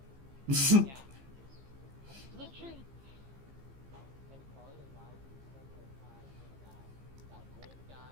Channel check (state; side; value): late; left; 15 ms